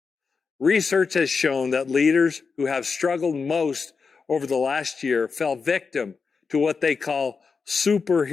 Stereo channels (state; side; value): quieter; right; 5.1 dB